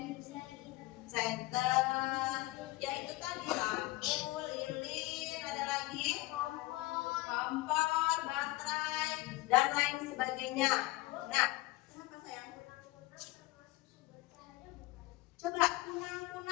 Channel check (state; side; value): quieter; right; 19.3 dB